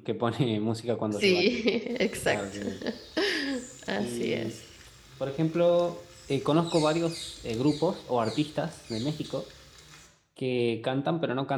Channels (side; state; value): both; identical; correlation 1.00